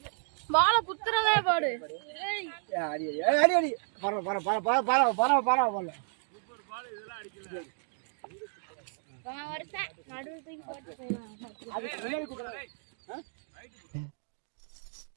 பால குத்துறதே பாரு. அடி அடி அடி பர பர பர பர பர பர பர பர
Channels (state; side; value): silent; left; 56 dB below the other